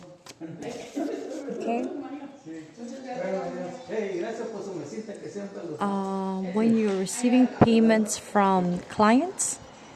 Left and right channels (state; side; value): identical; both; correlation 1.00